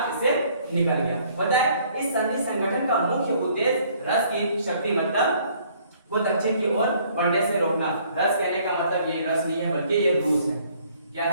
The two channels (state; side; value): inverted; both; correlation -0.61